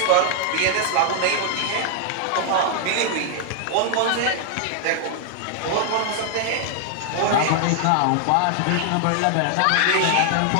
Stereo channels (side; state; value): both; different; correlation 0.00